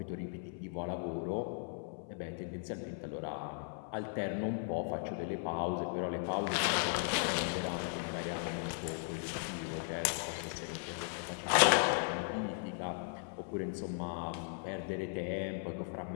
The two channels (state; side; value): silent; right; 53 dB below the other